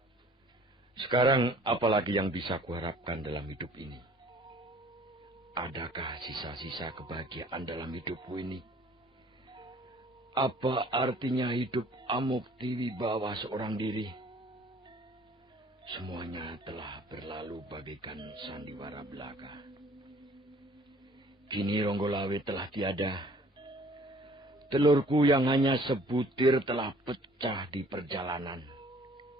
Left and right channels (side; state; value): both; normal; correlation 0.54